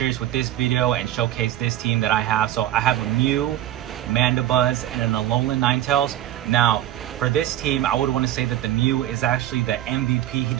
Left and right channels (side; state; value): left; quieter; 13.1 dB